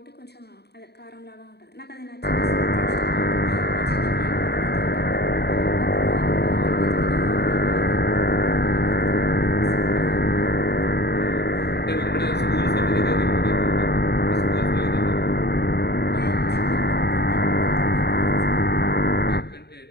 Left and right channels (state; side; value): late; right; 0.48 ms